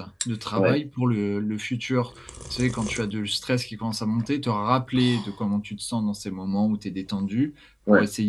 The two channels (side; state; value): both; identical; correlation 1.00